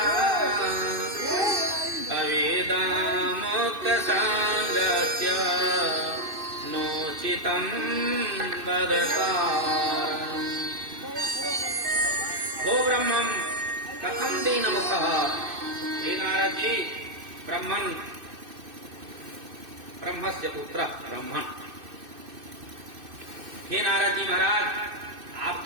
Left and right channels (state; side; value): late; left; 2.6 ms